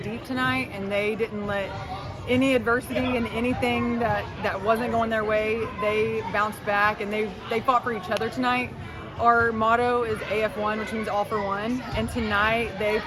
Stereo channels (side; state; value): both; identical; correlation 1.00